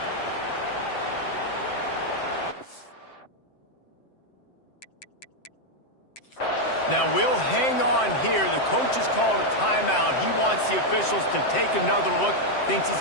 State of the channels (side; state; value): right; late; 7.7 ms